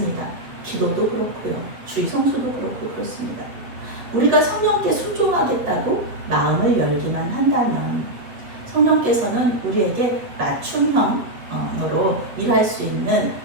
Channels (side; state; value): left; late; 8.0 ms